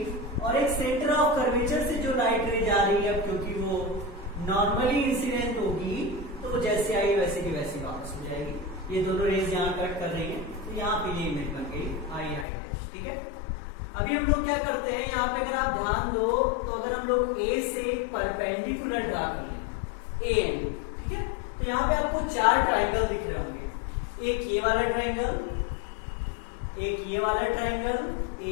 और एक सेंटर ऑफ कर्वेचर से जो लाइट रे जा रही है, क्योंकि वो नॉर्मली इंसिडेंट होगी तो वो जैसे आई वैसे की वैसी वापस हो जाएगी। ये दोनों रेज यहाँ कट कर रही है तो यहाँ पे ये इमेज बन गई आई डैश। ठीक है, अभी हम लोग क्या करते हैं, यहाँ पे अगर आप ध्यान दो तो अगर हम लोग ए से परपेंडिकुलर ड्रा कर लें ए एन, ठीक है, तो यहाँ पे आपको चार ट्राइंगल दिख रहे होंगे। एक ये वाला ट्राइंगल, एक ये वाला ट्राइंगल,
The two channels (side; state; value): right; drops out; at 12.5 s